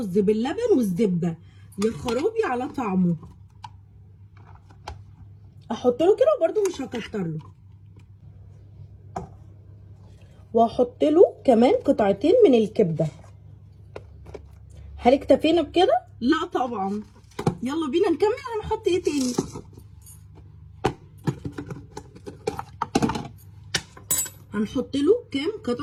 باللبن والزبده، يا خرابي على طعمه. احط له كده وبرده مش هكتر له، واحط له كمان قطعتين من الكبده. هل اكتفينا بكده؟ لا طبعا. يلا بينا نكمل. هنحط ايه تاني؟ هنحط له كام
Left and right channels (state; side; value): identical; both; correlation 1.00